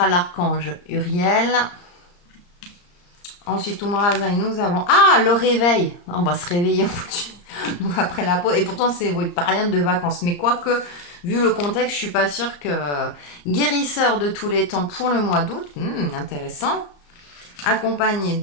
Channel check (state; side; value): late; right; 34 ms